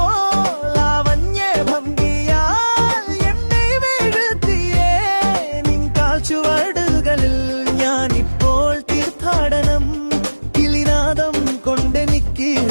ചുവടുകളിൽ ഞാനിപ്പോൾ തീർത്ഥാടനം, കിളിനാദം കൊണ്ടെനിക്ക്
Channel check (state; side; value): inverted; both; correlation -1.00